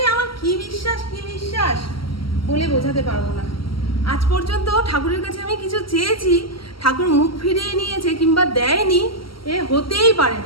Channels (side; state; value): right; late; 0.74 ms